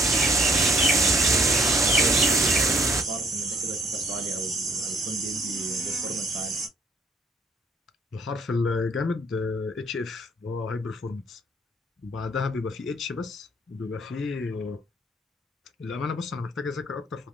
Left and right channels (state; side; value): normal; both; correlation 0.64